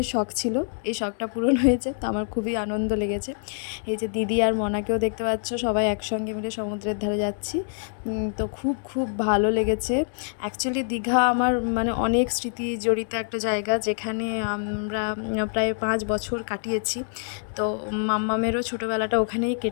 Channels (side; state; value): right; silent; digital silence